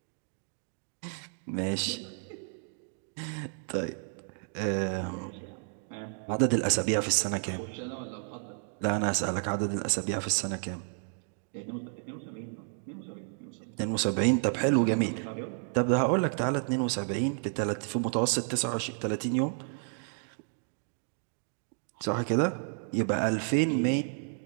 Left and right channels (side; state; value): left; silent; 57 dB below the other